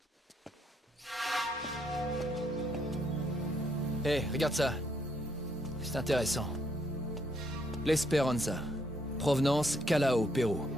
Hé, regarde ça. C'est intéressant. L'Esperanza. Provenance, Callao, Pérou.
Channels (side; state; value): both; normal; correlation 0.72